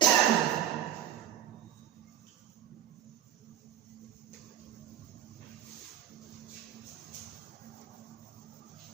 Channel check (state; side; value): quieter; left; 10.9 dB